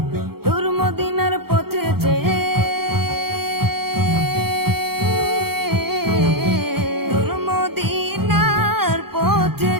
দূর মদিনার পথে চেয়ে, দূর মদিনার পথে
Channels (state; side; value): late; left; 0.95 ms